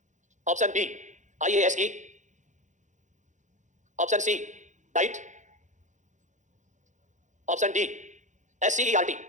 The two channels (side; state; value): left; late; 0.35 ms